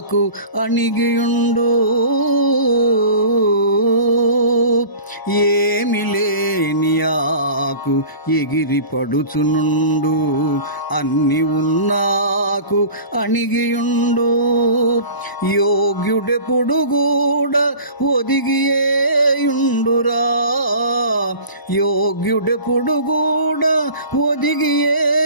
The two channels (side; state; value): right; late; 1.0 ms